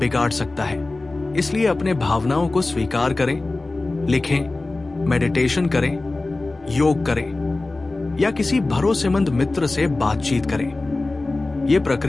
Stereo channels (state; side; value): quieter; right; 3.1 dB